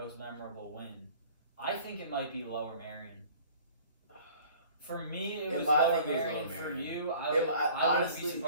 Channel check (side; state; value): both; inverted; correlation -0.49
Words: memorable win? I think it might be Lower Marion. For me, it was Lower Marion. For you, I wouldn't honestly be